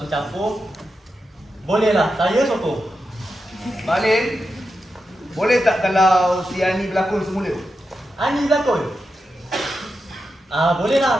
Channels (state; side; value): normal; both; correlation 0.88